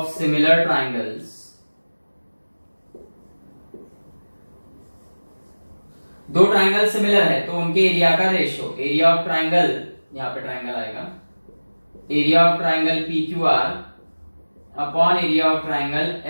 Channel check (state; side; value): inverted; both; correlation -1.00